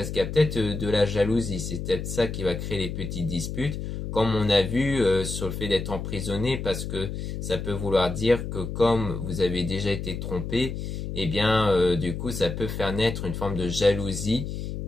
qu'il y a peut-être de la jalousie, c'est peut-être ça qui va créer les petites disputes, comme on a vu sur le fait d'être emprisonné, parce que ça peut vouloir dire que comme vous avez déjà été trompé, eh bien du coup ça peut faire naître une forme de jalousie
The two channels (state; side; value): noise; left; hum, 5 dB below the sound